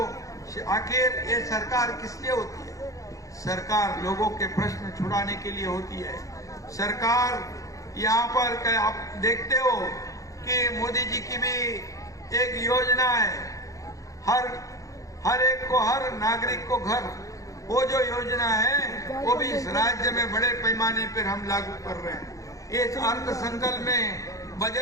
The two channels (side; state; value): right; late; 0.16 ms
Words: आखिर ये सरकार किस लिए होती है? सरकार लोगों के प्रश्न छुड़ाने के लिए होती है। सरकार यहाँ पर आप देखते हो कि मोदी जी की भी एक योजना है, हर एक को, हर नागरिक को घर, वो जो योजना है वो भी इस राज्य में बड़े पैमाने पर हम लागू कर रहे हैं। इस अर्थ संकल्प में,